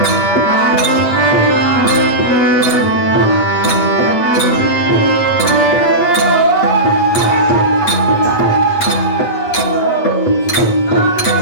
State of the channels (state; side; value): late; right; 8.5 ms